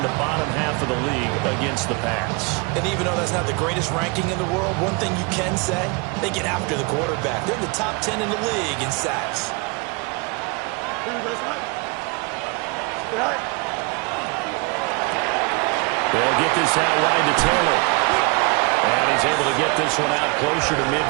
the bottom half of the league against the pass. And even though that's not the greatest ranking in the world, one thing you can say, they get after the quarterback. They're in the top 10 in the league in sacks. They'll get this out wide to Taylor. And he's able to get this one out closer to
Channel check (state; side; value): quieter; left; 29.2 dB